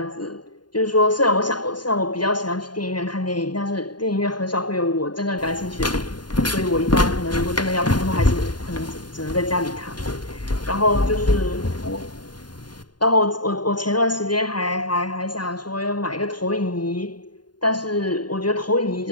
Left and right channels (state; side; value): late; right; 0.70 ms